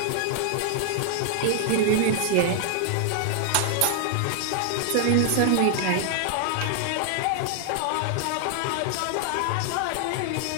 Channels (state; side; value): different; both; correlation 0.00